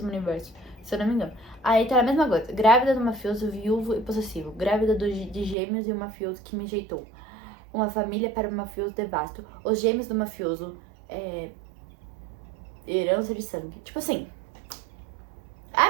universo. Se eu não me engano. Aí tá a mesma coisa. Grávida do mafioso, viúvo e possessivo. Grávida de gêmeos e um mafioso que me rejeitou. Uma família para um mafioso devasto. Os gêmeos do mafioso. Herança de sangue. Tipo assim. É a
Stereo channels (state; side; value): drops out; left; at 5.6 s